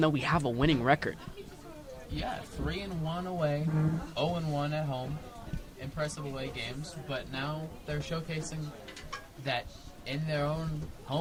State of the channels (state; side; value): identical; both; correlation 1.00